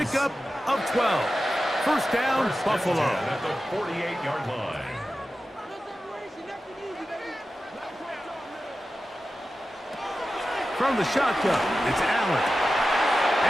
of 12. First down, Buffalo. At the 48-yard line. From the shotgun, it's Allen.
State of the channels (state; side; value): normal; both; correlation 0.93